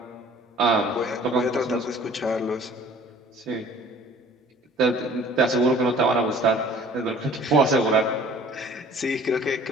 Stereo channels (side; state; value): both; normal; correlation 0.50